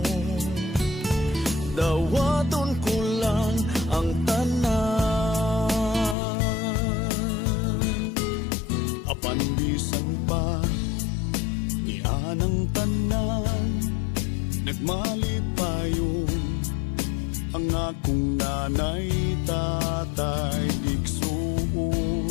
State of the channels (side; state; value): right; drops out; at 6.2 s